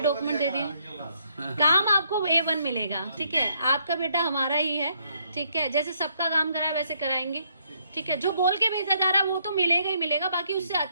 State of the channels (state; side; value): inverted; both; correlation -0.71